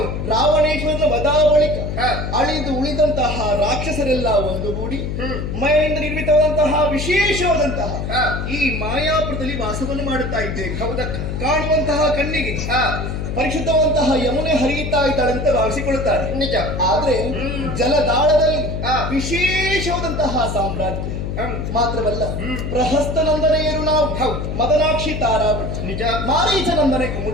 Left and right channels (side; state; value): left; noise; hum, 4 dB below the sound